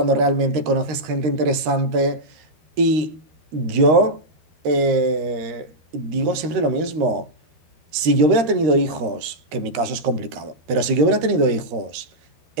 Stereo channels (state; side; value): late; left; 13 ms